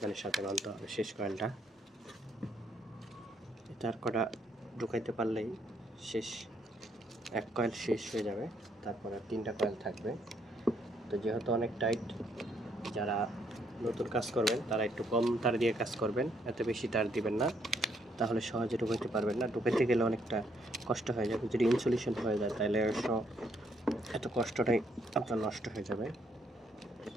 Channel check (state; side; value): normal; both; correlation 0.71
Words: সাথে বানতে হবে শেষ কয়েলটা। তার কটা ঢুকাইতে পারলেই শেষ, 1 কয়েল শেষ হয়ে যাবে, তারপরে 3টা কয়েল থাকবে। তো যেহেতু অনেক টাইট, যারা নতুন কাজ করবেন তারা একটু কম তার দিয়ে কাজ করবেন, এত বেশি তার দিবেন না, তাহলে সহজে ঢুকাইতে পারবেন না। ঢুকাইতে গেলে অনেকটা কষ্ট হয়ে যাবে, যদি ইনসুলেশন হয়ে যায় তাহলে এত কষ্টটাই আপনার নষ্ট হয়ে যাবে।